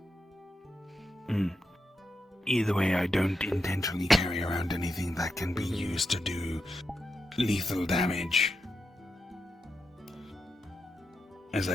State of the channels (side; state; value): both; normal; correlation 0.86